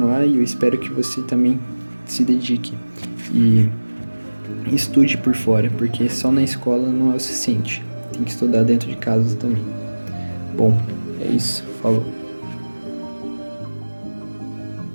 e eu espero que você também se dedique e estude por fora, porque só na escola não é o suficiente. Tem que estudar dentro de casa também. Bom, é isso. Falou.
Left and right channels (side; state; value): both; inverted; correlation -1.00